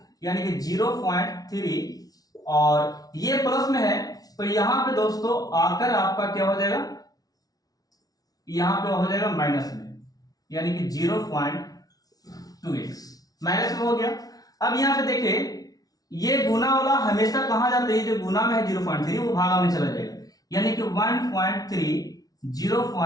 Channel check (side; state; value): right; late; 0.18 ms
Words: यानी कि 0.3 और ये प्लस में है तो यहाँ पे दोस्तों आकर आपका क्या हो जाएगा, यहाँ पे हो जाएगा माइनस में, यानी कि 0.2x माइनस में हो गया। अब यहाँ पे देखिए ये गुना वाला हमेशा कहां जाता है, ये जो गुना में है 0.3 वो भागा में चला जाएगा, यानी कि 1.3